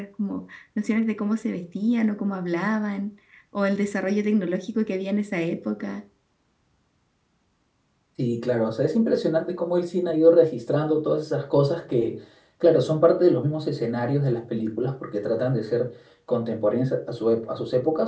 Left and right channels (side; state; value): both; identical; correlation 1.00